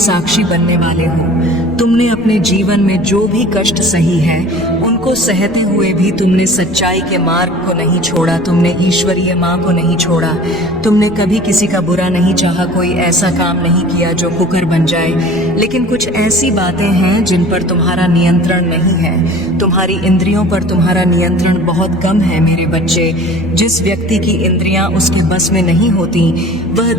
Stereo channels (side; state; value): left; noise; rumble, 19 dB below the sound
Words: बनने वाले हो। तुमने अपने जीवन में जो भी कष्ट सही है, उनको सहते हुए भी तुमने सच्चाई के मार्ग को नहीं छोड़ा। तुमने ईश्वरीय माँ को नहीं छोड़ा। तुमने कभी किसी का बुरा नहीं चाहा, कोई ऐसा काम नहीं किया जो कुकर बन जाए। लेकिन कुछ ऐसी बातें हैं जिन पर तुम्हारा नियंत्रण नहीं है। तुम्हारी इंद्रियों पर तुम्हारा नियंत्रण बहुत कम है। मेरे बच्चे, जिस व्यक्ति की इंद्रियां उसके बस में नहीं होती, वह